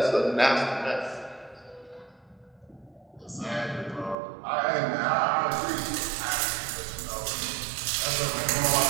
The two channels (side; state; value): left; drops out; at 4.2 s